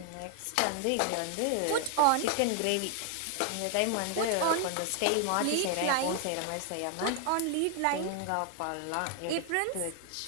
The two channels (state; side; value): different; both; correlation 0.00